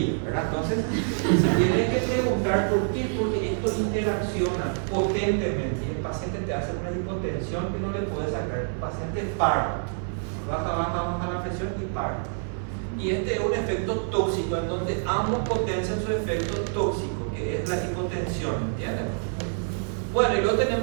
¿verdad? Entonces, se tiene que preguntar por qué, porque esto interacciona potentemente y el paciente te hace una hipotensión que no le puede sacar. El paciente para, baja la presión y para. Y este es un efecto tóxico en donde ambos potencian su efecto tóxico, que es la hipotensión, ¿entienden? Bueno, y luego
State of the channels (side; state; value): left; silent; 60 dB below the other